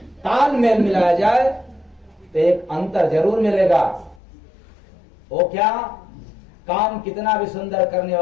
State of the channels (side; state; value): right; drops out; at 4.2 s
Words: तालमेल मिलाया जाए तो एक अंतर जरूर मिलेगा। वो क्या, काम कितना भी सुंदर करने